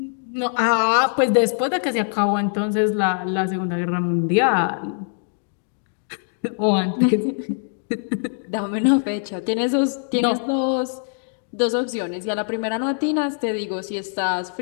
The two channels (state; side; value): silent; right; digital silence